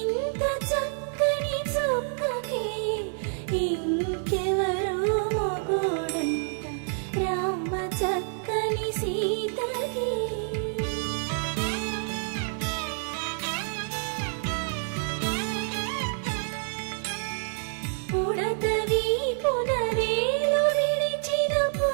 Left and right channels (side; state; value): left; silent; 59 dB below the other